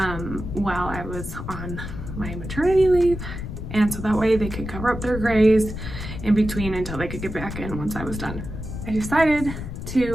while I was on my maternity leave, and so that way they could cover up their grays in between until they could get back in once I was done. I decided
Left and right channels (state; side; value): noise; left; rumble, 8 dB below the sound